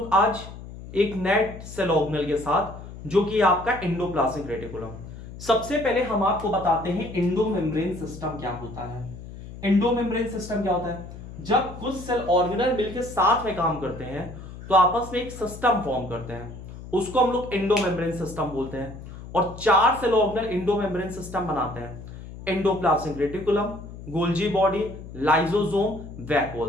आज एक नए सेल ऑर्गेनल के साथ, जो कि आपका एंडोप्लाज्मिक रेटिकुलम। सबसे पहले हम आपको बताते हैं एंडोमेम्ब्रेन सिस्टम क्या होता है। एंडोमेम्ब्रेन सिस्टम क्या होता है? जब कुछ सेल ऑर्गेनल मिलकर साथ में काम करते हैं तो आपस में एक सिस्टम फॉर्म करते हैं, उसको हम लोग एंडोमेम्ब्रेन सिस्टम बोलते हैं। और चार सेल ऑर्गेनल एंडोमेम्ब्रेन सिस्टम बनाते हैं: endoplasmic reticulum, Golgi body, lysosome,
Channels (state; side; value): noise; left; hum, 13 dB below the sound